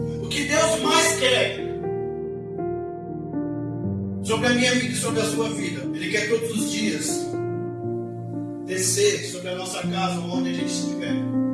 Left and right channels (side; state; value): both; identical; correlation 1.00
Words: O que Deus mais quer sobre a minha vida e sobre a sua vida, Ele quer todos os dias descer sobre a nossa casa, onde a gente estiver,